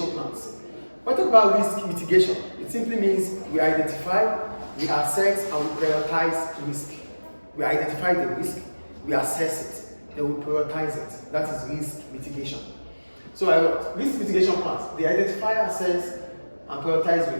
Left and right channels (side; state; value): both; inverted; correlation -1.00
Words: plans. When we talk about risk mitigation, it simply means we identify, we assess, and we prioritize risk. We identify the risk, we assess it, then we prioritize it. That is risk mitigation. So risk mitigation plans, they identify, assess, and prioritize